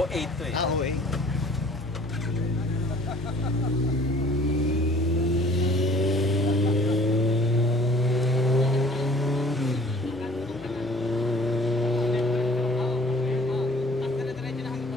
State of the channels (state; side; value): normal; both; correlation 0.52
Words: 8 to eh. Ah, oo eh.